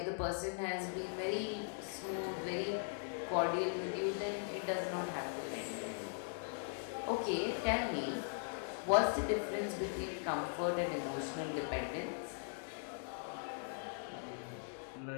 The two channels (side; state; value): right; silent; digital silence